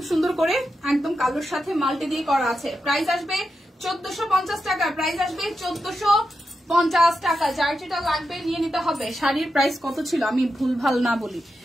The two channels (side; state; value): both; normal; correlation 0.88